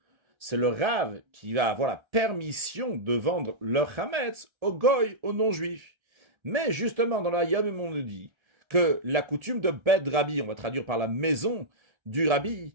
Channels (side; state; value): left; late; 1.3 ms